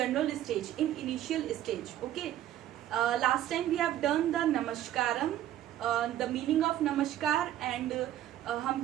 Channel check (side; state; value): left; quieter; 12.4 dB